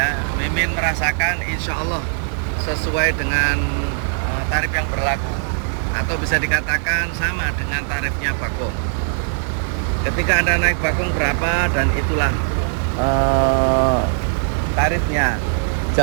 Mimin merasakan insya Allah sesuai dengan tarif yang berlaku, atau bisa dikatakan sama dengan tarifnya Bakong. Ketika Anda naik Bakong berapa, dan itulah tarifnya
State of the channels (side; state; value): left; silent; digital silence